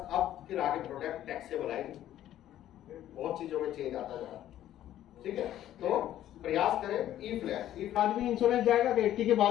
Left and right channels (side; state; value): right; quieter; 12.4 dB